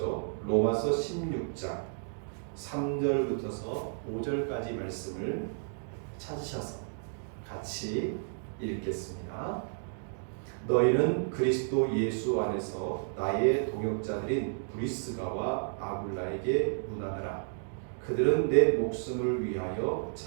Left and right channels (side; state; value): left; silent; digital silence